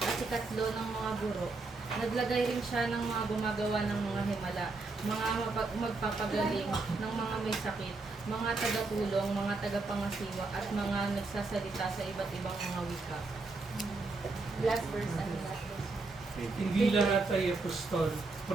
at ikatlo ng mga guro. Naglagay rin siya ng mga gumagawa ng mga himala, mga magpapagaling ng mga may sakit, mga tagatulong, mga tagapangasiwa, at mga nagsasalita sa iba't ibang mga wika. Last verse, ano last verse? Hindi lahat ay apostol,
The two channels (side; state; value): left; quieter; 3.6 dB